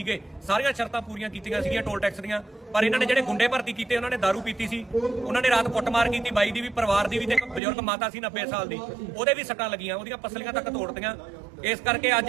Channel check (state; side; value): drops out; left; at 7.6 s